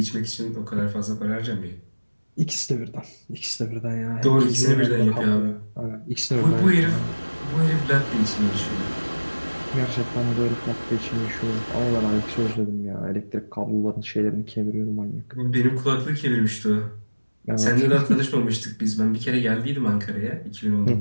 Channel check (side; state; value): both; inverted; correlation -1.00